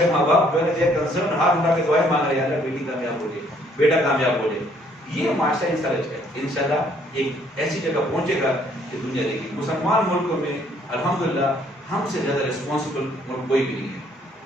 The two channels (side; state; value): both; normal; correlation 0.64